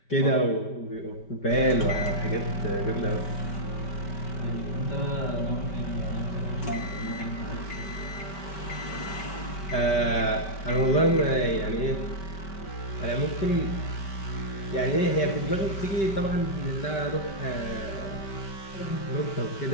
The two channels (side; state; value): right; late; 5.2 ms